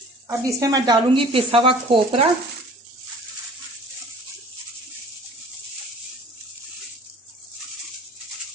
अब इसमें मैं डालूंगी पिसा हुआ खोपरा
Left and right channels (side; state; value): both; normal; correlation 0.47